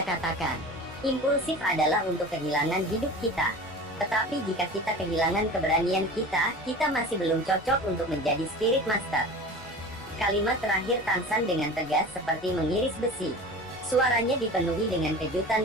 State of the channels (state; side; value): normal; both; correlation 0.36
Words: katakan, impulsif adalah untuk kehilangan hidup kita. Tetapi jika kita kehilangan keberanian kita, kita masih belum cocok untuk menjadi Spirit Master." Kalimat terakhir Tangsan dengan tegas seperti mengiris besi. Suaranya dipenuhi dengan